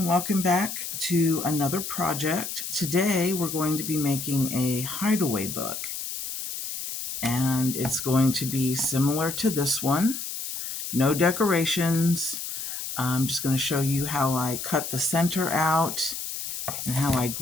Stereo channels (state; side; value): noise; left; hiss, 6 dB below the sound